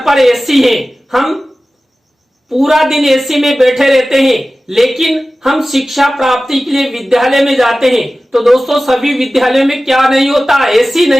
एसी है, हम पूरा दिन एसी में बैठे रहते हैं, लेकिन हम शिक्षा प्राप्ति के लिए विद्यालय में जाते हैं। तो दोस्तों सभी विद्यालयों में क्या नहीं होता, एसी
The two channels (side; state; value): both; normal; correlation 0.96